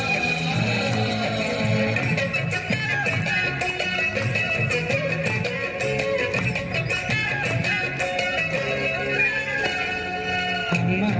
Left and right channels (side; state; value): both; identical; correlation 1.00